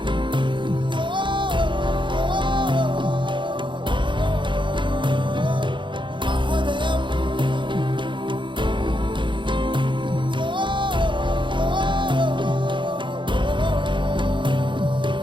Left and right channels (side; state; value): left; late; 0.23 ms